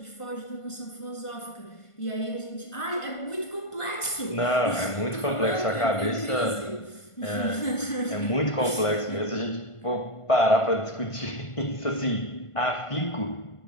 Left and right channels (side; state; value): right; late; 1.5 ms